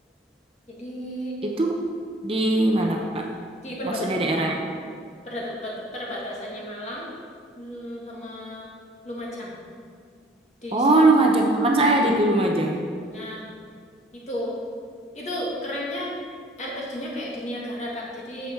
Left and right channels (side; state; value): both; normal; correlation 0.53